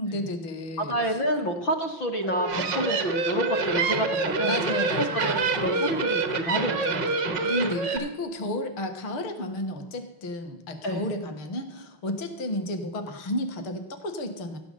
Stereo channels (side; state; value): right; late; 6.0 ms